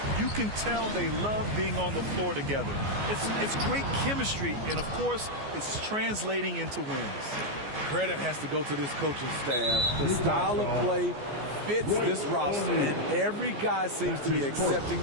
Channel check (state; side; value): late; left; 14 ms